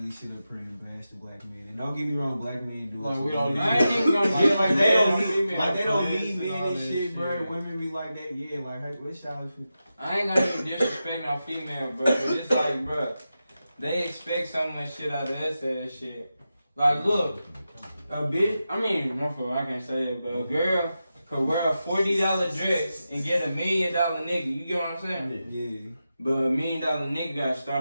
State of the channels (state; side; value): inverted; both; correlation -0.90